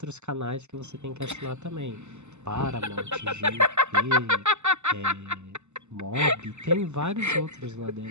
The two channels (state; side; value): late; left; 0.83 ms